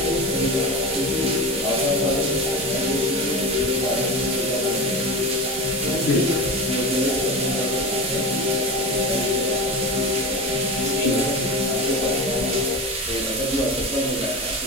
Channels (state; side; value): normal; both; correlation 0.26